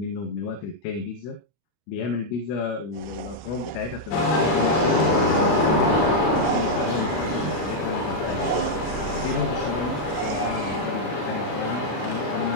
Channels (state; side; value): late; right; 25 ms